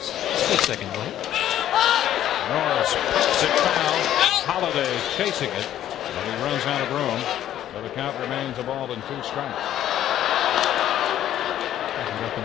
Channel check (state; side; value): quieter; right; 11.8 dB